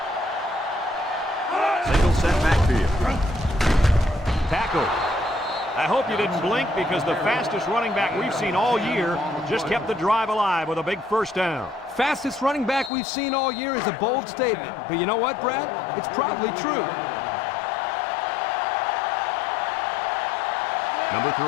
Single set backfield. Tackle. I hope you didn't blink because the fastest running back we've seen all year just kept the drive alive with a big first down. Fastest running back we've seen all year is a bold statement. But you know what, Brad? It's probably true. Number 3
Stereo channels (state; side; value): drops out; right; at 12.9 s